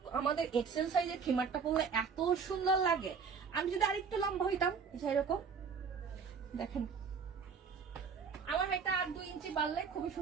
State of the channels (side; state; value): left; quieter; 5.9 dB